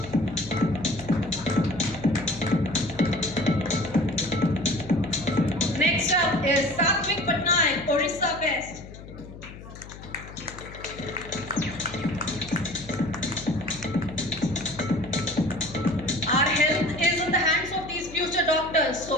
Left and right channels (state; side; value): noise; left; hum, 15 dB below the sound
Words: Next up is Satvik Patnaik, Orissa best. Our health is in the hands of these future doctors,